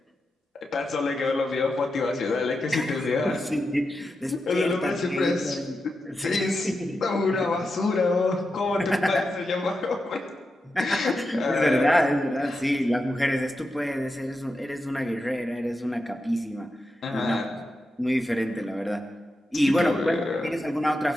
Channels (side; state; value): both; normal; correlation 0.89